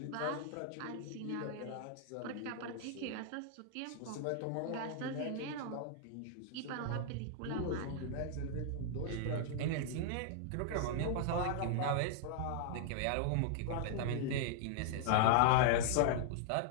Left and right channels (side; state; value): both; different; correlation -0.01